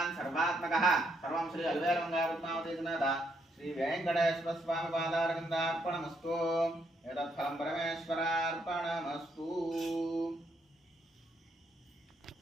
सर्वात्मकः सर्वं श्री अल्वेलमङ्गलपद्मावती समेत श्री वेंकटेश्वर स्वामी पादारविन्दार्पणमस्तु एतत् फलं परमेश्वरार्पणमस्तु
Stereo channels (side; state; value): both; normal; correlation 0.75